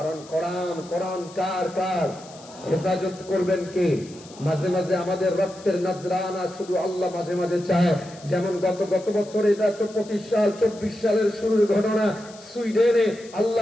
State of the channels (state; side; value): noise; left; hiss, 21 dB below the sound